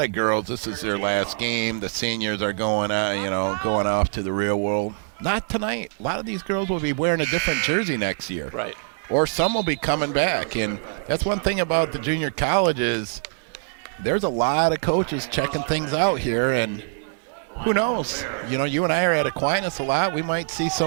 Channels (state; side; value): silent; left; 63 dB below the other